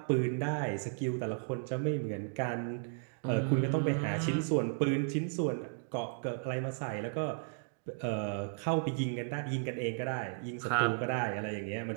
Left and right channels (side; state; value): left; silent; digital silence